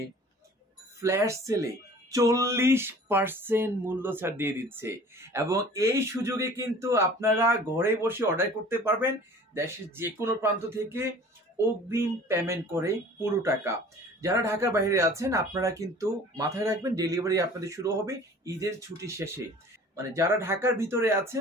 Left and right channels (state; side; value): normal; both; correlation 0.47